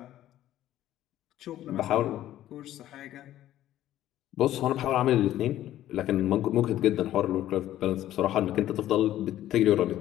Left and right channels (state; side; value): quieter; right; 13.1 dB